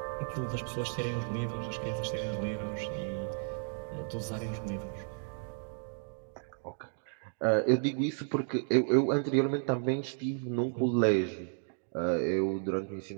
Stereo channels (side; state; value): left; silent; digital silence